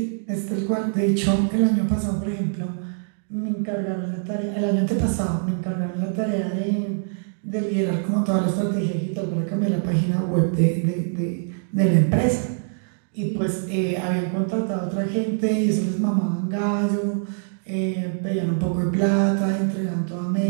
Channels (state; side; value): silent; left; digital silence